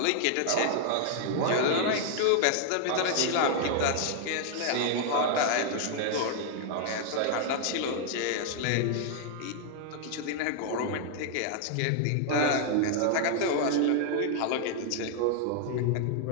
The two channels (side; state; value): both; different; correlation 0.00